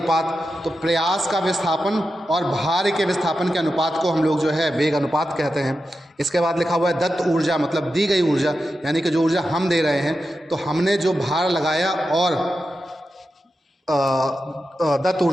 तो प्रयास का विस्थापन और भार के विस्थापन के अनुपात को हम लोग जो है वेग अनुपात कहते हैं। इसके बाद लिखा हुआ है दत्त ऊर्जा, मतलब दी गई ऊर्जा, यानी कि जो ऊर्जा हम दे रहे हैं, तो हमने जो भार लगाया और दत्त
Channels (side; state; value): both; normal; correlation 0.90